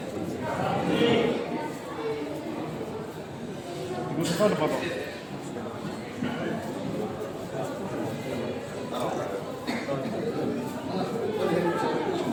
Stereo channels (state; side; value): identical; both; correlation 1.00